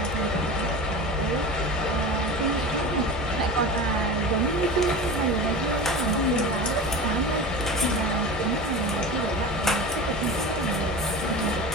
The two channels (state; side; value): normal; both; correlation 0.30